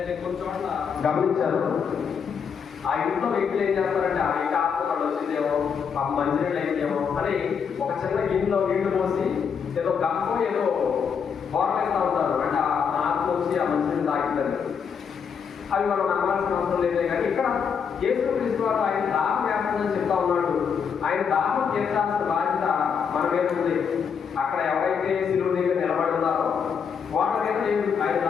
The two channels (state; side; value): quieter; right; 6.7 dB